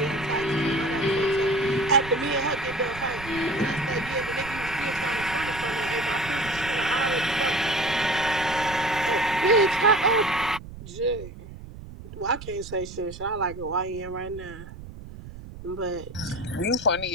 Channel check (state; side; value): noise; right; rumble, 14 dB below the sound